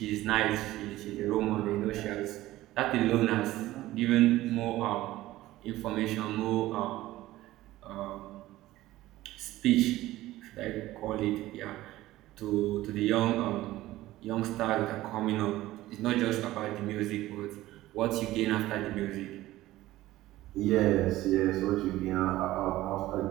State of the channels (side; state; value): left; quieter; 16.3 dB